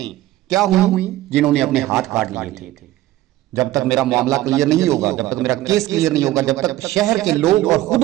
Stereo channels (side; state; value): left; quieter; 15.7 dB